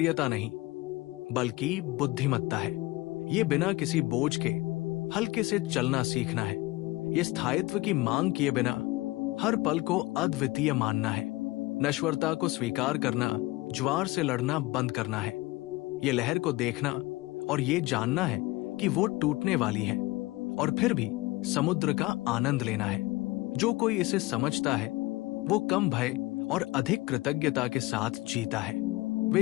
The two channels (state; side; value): quieter; right; 20.7 dB